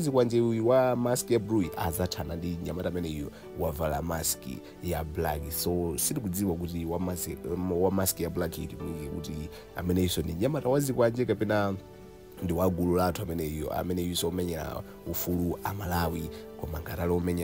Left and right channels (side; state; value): both; identical; correlation 1.00